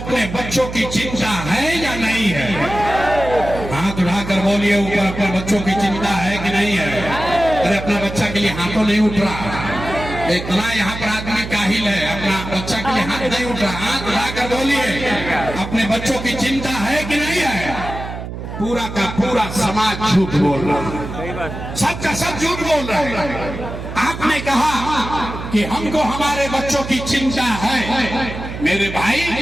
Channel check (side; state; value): right; noise; hum, 8 dB below the sound